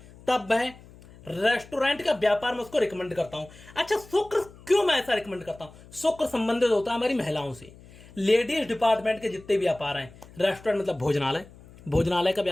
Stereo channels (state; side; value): noise; left; hum, 22 dB below the sound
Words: तब वह रेस्टोरेंट का व्यापार मैं उसको रिकमेंड करता हूं। अच्छा, शुक्र क्यों मैं ऐसा रिकमेंड करता हूं, शुक्र संबंधित होता है हमारी महिलाओं से। लेडीज डिपार्टमेंट के जितने व्यापार हैं, रेस्टोरेंट मतलब भोजनालय, भोजनालय का